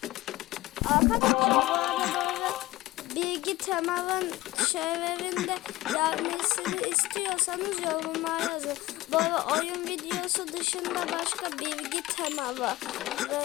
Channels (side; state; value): right; quieter; 17.9 dB